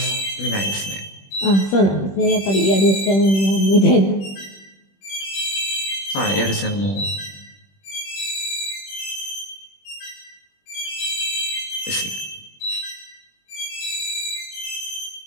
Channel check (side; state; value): right; late; 21 ms